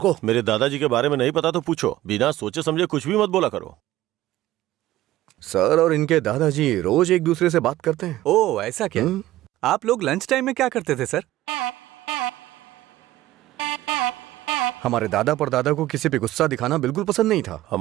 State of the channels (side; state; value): left; quieter; 15.4 dB